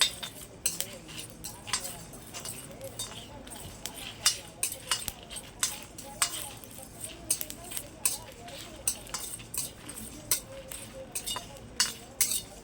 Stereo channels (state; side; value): identical; both; correlation 1.00